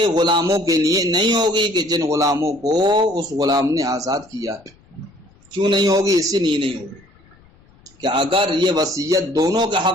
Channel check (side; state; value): left; noise; rumble, 29 dB below the sound